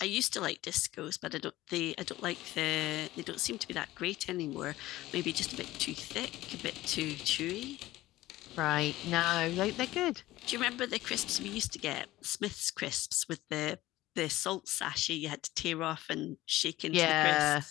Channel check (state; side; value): quieter; right; 16.8 dB